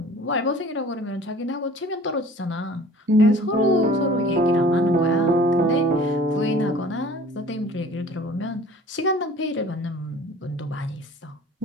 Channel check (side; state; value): both; normal; correlation 0.47